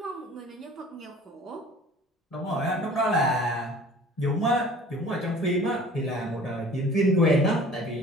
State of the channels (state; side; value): normal; both; correlation 0.47